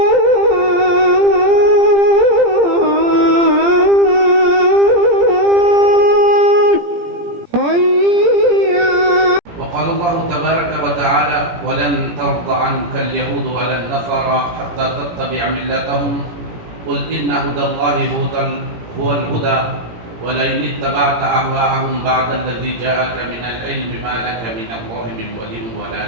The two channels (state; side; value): late; left; 17 ms